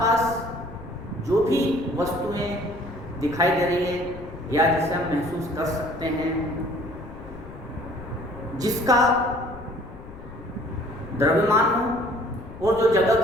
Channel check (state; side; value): noise; left; rumble, 15 dB below the sound